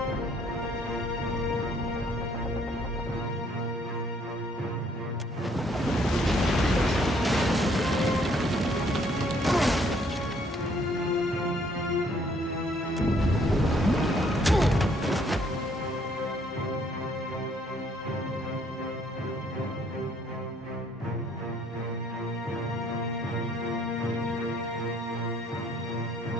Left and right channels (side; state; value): both; normal; correlation 0.65